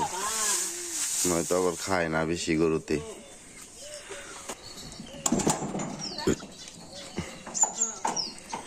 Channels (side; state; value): both; identical; correlation 1.00